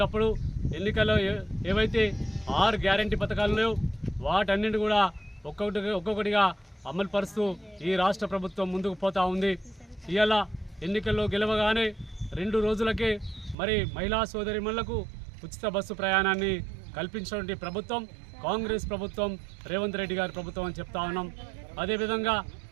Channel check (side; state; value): left; drops out; at 13.6 s